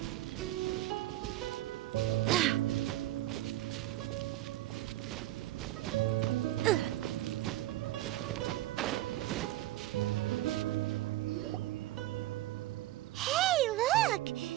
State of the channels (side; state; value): left; quieter; 15.7 dB